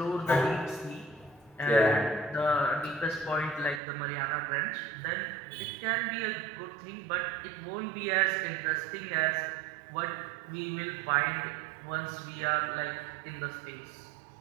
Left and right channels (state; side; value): drops out; left; at 3.8 s